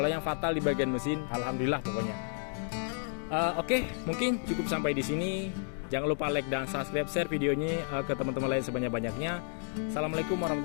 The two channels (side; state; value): right; silent; 57 dB below the other